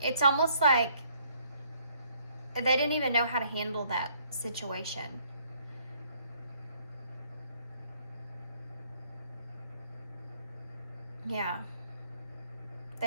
it's almost like they didn't even know how to handle that situation. Yeah.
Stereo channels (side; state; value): both; inverted; correlation -0.65